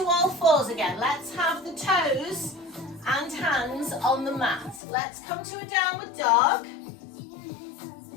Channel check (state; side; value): drops out; right; at 4.8 s